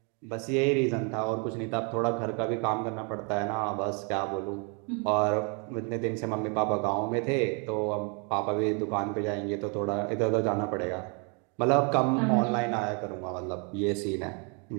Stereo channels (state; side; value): quieter; left; 35.9 dB